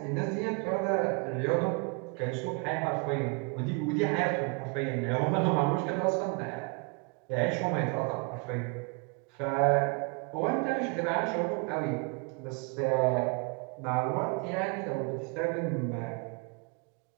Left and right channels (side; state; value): left; quieter; 33.1 dB